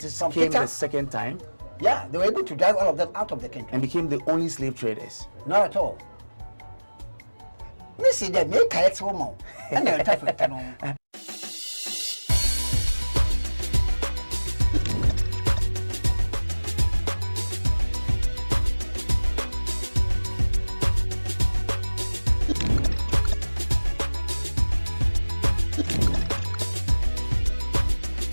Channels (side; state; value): both; inverted; correlation -1.00